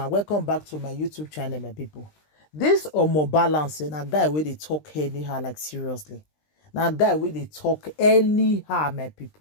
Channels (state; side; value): late; right; 20 ms